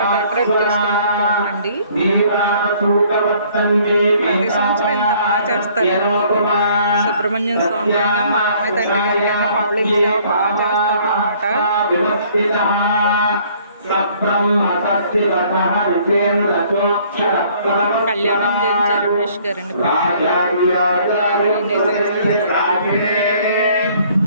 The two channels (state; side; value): inverted; both; correlation -0.59